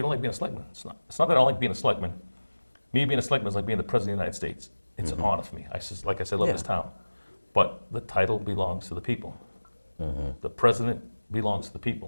don't like being a selectman. It's not that I don't like being a selectman. Me being a selectman is like being the president of the United States. It's an honor for me. I says, like I said, I love this town, but the title belongs to the people. The president belongs to the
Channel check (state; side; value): inverted; both; correlation -1.00